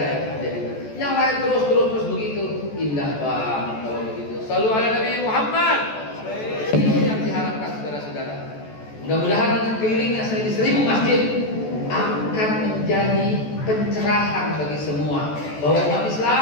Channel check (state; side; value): late; right; 14 ms